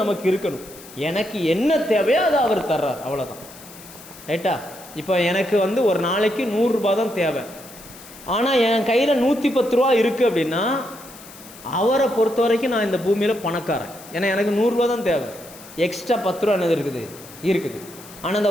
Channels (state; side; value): noise; left; hiss, 19 dB below the sound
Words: நமக்கு இருக்கணும். எனக்கு என்ன தேவையோ அதை அவர் தர்றார், அவ்வளோதான். ரைட்டா? இப்போ எனக்கு ஒரு நாளைக்கு 100 ரூபா தான் தேவை, ஆனால் என் கையில் 110 ரூபா இருக்குது அப்படின்னா அவரை பொறுத்த வரைக்கும் நான் இந்த பூமியில் பணக்காரன். ஏன்னா எனக்கு 100 ரூபா தான் தேவை, எக்ஸ்ட்ரா 10 ரூபா என்னது இருக்குது. ஆனால்